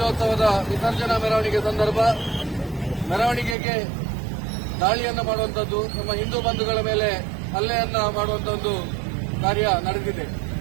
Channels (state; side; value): drops out; left; at 3.6 s